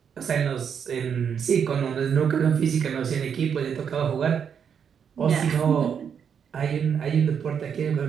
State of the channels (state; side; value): quieter; left; 7.5 dB